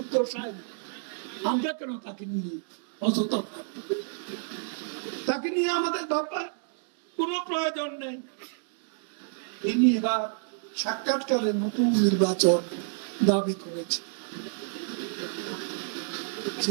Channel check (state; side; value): silent; left; digital silence